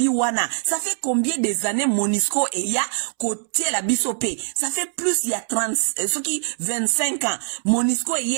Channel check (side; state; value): left; silent; 64 dB below the other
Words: wana ça fait combien des années MONUSCO e ya côté la biso pe ça fait plus il y a 30 ce qui 25 ans MONUSCO